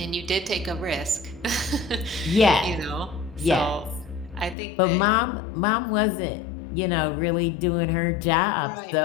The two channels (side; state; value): right; drops out; at 4.5 s